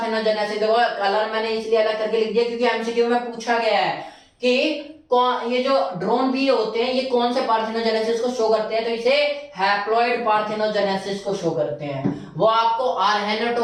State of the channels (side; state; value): both; identical; correlation 1.00